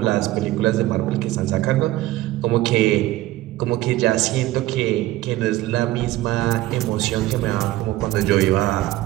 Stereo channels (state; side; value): quieter; left; 16.6 dB